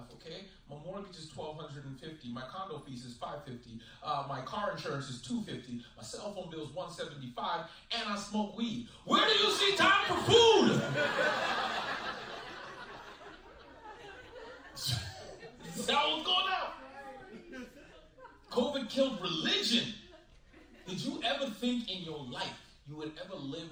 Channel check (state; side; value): identical; both; correlation 1.00